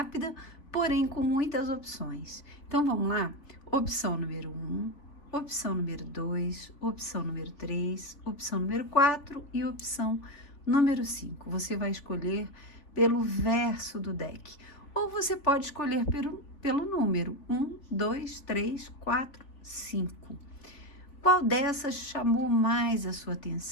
porém com muitas opções. Então vamos lá? Opção número 1, opção número 2, opção número 3, opção número 4 e opção número 5. Você vai escolher pelo verso do deck. Ou você pode escolher pelo número 1, 2, 3, 4, 5. Qual dessas chamou mais a sua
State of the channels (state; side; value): late; right; 3.5 ms